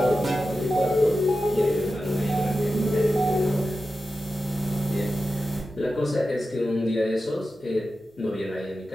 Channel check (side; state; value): both; normal; correlation 0.92